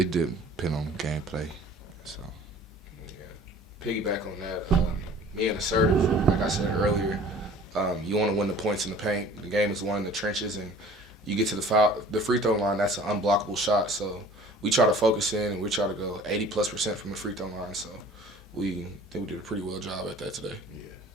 depends on gameplay. So Piggyback on that, me and assertive, like I said earlier, you want to win the points in the paint. The game is won in the trenches, and you get to the free throw line. That's an unblockable shot. So we try to focus in, and we try to go 80+% from the free throw line. So we think we did a pretty well job at that today.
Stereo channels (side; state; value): both; normal; correlation 0.47